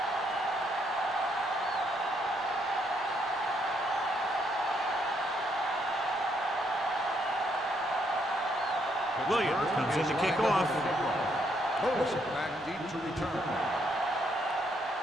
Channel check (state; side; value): normal; both; correlation 0.73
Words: Williams comes in to kick off. Toss it back deep to return.